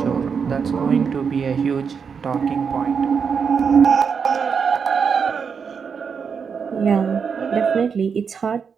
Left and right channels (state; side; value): quieter; left; 6.2 dB